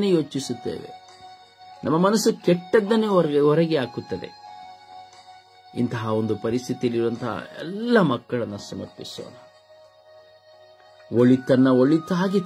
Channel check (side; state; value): both; identical; correlation 1.00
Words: ಯೋಚಿಸುತ್ತೇವೆ. ನಮ್ಮ ಮನಸ್ಸು ಕೆಟ್ಟದ್ದನ್ನೇ ಹೊರಗೆ ಹಾಕುತ್ತದೆ. ಇಂತಹ ಒಂದು ಪರಿಸ್ಥಿತಿಯಲ್ಲಿರುವಂತಹ ಎಲ್ಲ ಮಕ್ಕಳನ್ನು ಸಮರ್ಪಿಸೋಣ. ಒಳಿತನ್ನ ಒಳಿತಾಗಿ